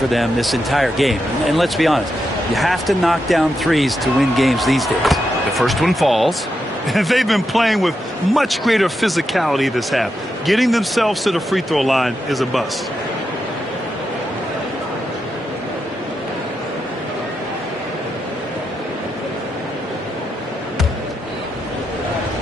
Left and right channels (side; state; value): both; normal; correlation 0.85